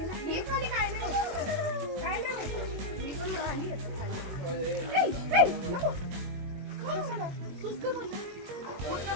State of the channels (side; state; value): left; late; 21 ms